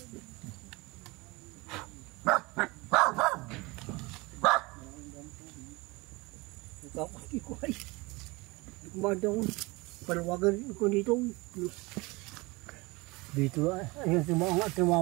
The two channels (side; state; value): left; quieter; 24.0 dB